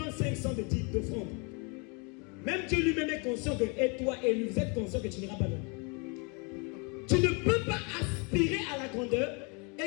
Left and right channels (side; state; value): right; quieter; 32.9 dB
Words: 500 d'offrande. Même Dieu lui-même est conscient que, et toi et lui, vous êtes conscient que tu n'iras pas loin. Tu ne peux pas aspirer à la grandeur